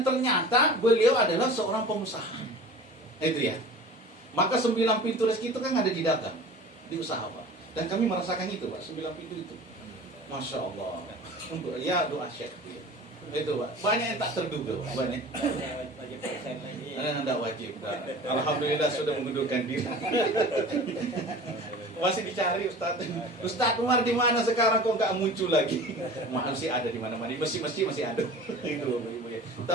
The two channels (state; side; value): normal; both; correlation 0.40